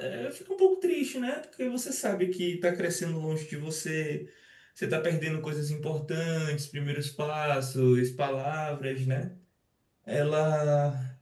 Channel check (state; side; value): identical; both; correlation 1.00